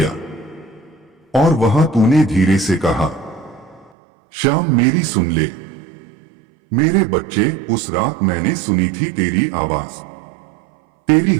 और वहां तूने धीरे से कहा, श्याम मेरी सुन ले। मेरे बच्चे, उस रात मैंने सुनी थी तेरी आवाज। तेरी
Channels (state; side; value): drops out; left; at 3.9 s